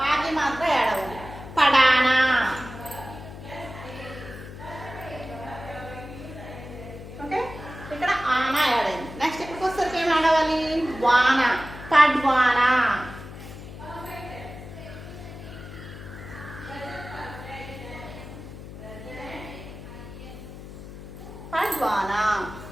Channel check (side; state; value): left; noise; hum, 13 dB below the sound